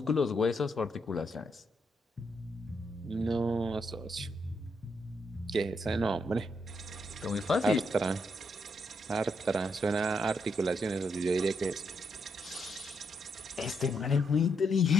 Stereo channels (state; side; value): normal; both; correlation 0.79